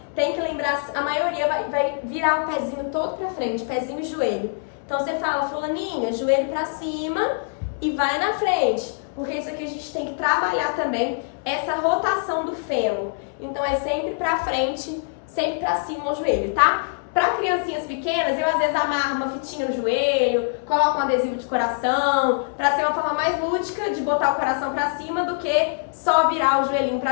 tem que lembrar, a maioria vai virar o pezinho todo pra frente, pezinho e joelho. Então você fala, fulaninha, joelho pra cima e vai na frente. Porque isso aqui a gente tem que trabalhar também, essa rotação do fêmur. Então é sempre pra frente, sempre pra cima o joelho, tá? Para criancinhas pequenas, eu às vezes amarro uma fitinha no joelho, coloco um adesivo de coração, para ser uma forma mais lúdica de botar o coração para cima do que só virar o joelhinho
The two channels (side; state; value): right; silent; 63 dB below the other